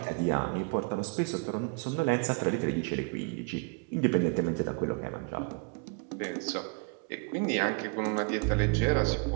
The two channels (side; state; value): left; quieter; 33.1 dB